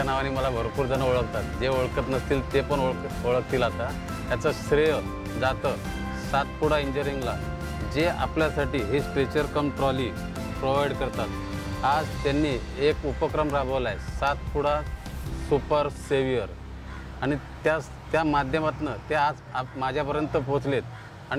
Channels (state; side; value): identical; both; correlation 1.00